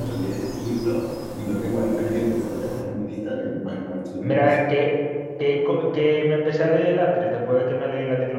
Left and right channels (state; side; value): identical; both; correlation 1.00